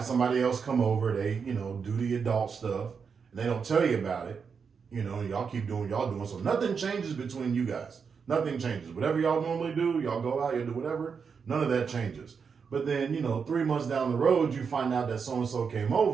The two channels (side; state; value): left; quieter; 6.0 dB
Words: somebody else come over, they do the adult stuff, and they don't tell you about it, y'all keep doing what y'all doing. So nothing changes between you guys. Nothing changes. Whatever y'all normally do, y'all go out, you do whatever. None of that changes. But then 3 months down the road, you find out that so and so came